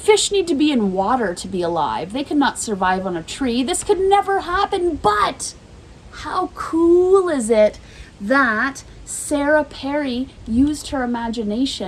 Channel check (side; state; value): both; identical; correlation 1.00